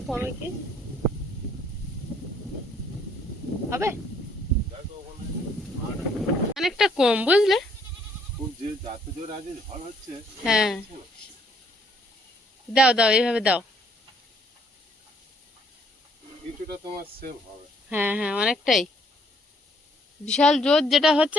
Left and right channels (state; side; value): normal; both; correlation 0.65